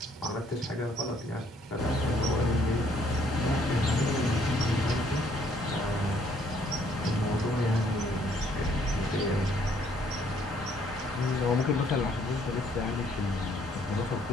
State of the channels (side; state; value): both; normal; correlation 0.65